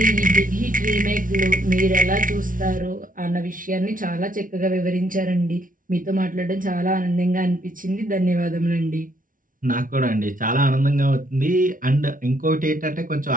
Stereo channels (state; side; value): late; left; 0.39 ms